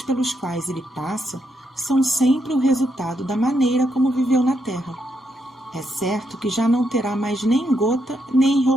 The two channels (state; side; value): normal; both; correlation 0.80